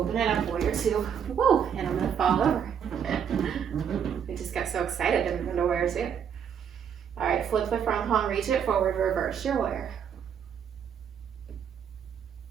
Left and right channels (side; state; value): left; quieter; 7.9 dB